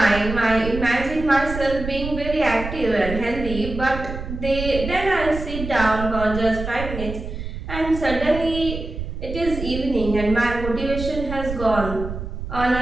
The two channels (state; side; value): noise; right; rumble, 7 dB below the sound